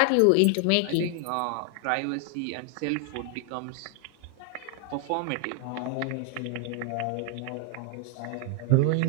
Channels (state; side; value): different; both; correlation 0.00